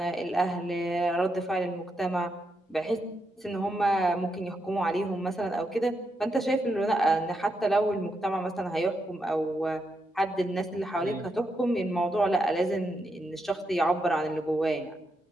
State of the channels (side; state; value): both; normal; correlation 0.83